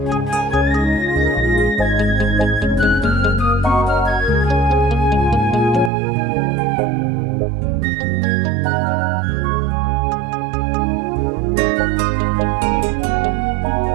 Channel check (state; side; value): drops out; left; at 5.9 s